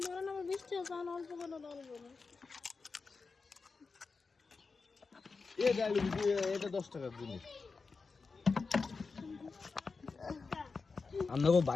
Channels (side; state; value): right; quieter; 4.5 dB